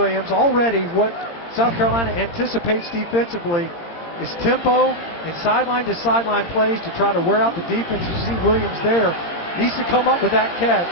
Already what South Carolina anticipates defensively is tempo and sideline-to-sideline plays to try to wear out the defense. You see Williams there. Needs to come up with that catch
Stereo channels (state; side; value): late; right; 17 ms